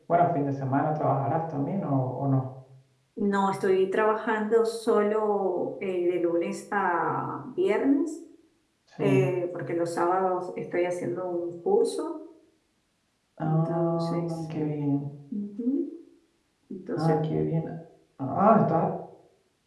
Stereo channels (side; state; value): both; identical; correlation 1.00